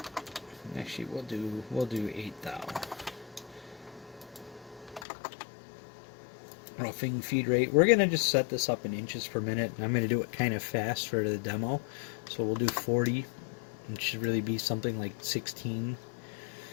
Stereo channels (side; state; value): right; drops out; at 5.1 s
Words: Actually, we'll do 8 thou. Roughing feed rate. We're going to just set this up in inches per minute. I'm going to do it kind of fast for the demo. So we'll do 40. It should really be something like 16.